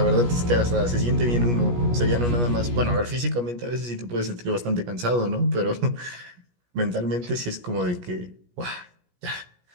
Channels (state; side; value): late; left; 17 ms